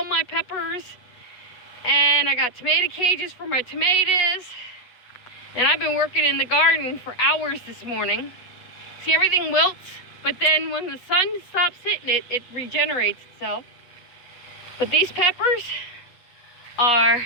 my peppers, and I got tomato cages for my tomatoes. And I've been working in the garden for hours this morning. See, everything wilts. But then when the sun stops hitting it, it regenerates itself. But these peppers are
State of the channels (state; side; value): late; right; 8.1 ms